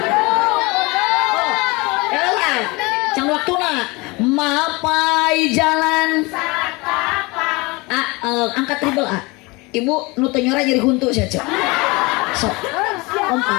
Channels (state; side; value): quieter; right; 24.9 dB